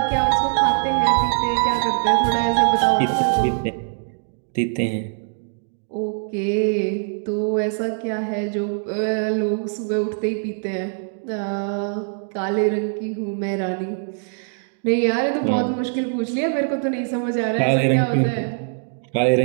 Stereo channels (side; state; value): left; silent; digital silence